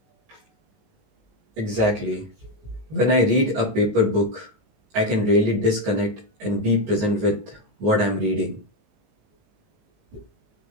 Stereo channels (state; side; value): late; left; 19 ms